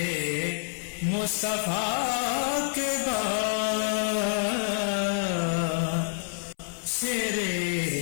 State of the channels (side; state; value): right; silent; 60 dB below the other